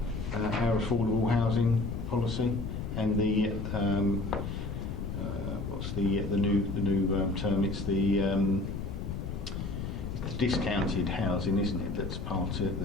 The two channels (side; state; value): left; noise; rumble, 5 dB below the sound